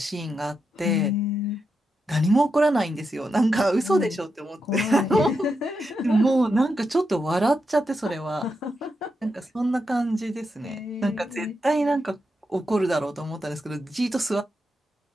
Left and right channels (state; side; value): normal; both; correlation 0.85